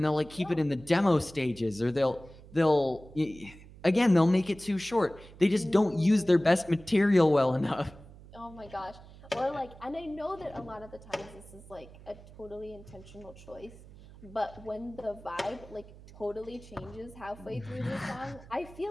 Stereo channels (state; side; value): noise; right; hum, 19 dB below the sound